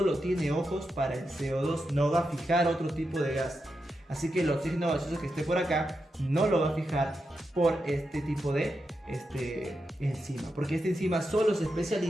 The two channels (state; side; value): normal; both; correlation 0.87